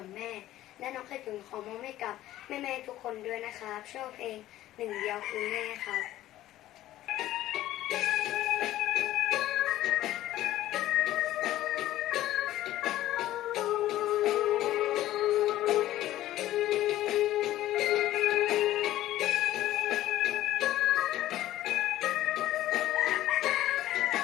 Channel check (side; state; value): right; quieter; 14.3 dB